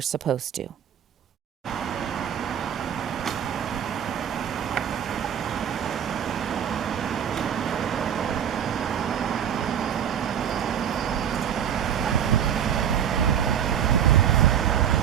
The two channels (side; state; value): left; quieter; 9.1 dB